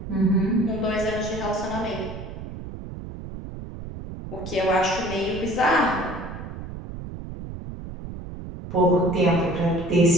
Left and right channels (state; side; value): noise; right; rumble, 10 dB below the sound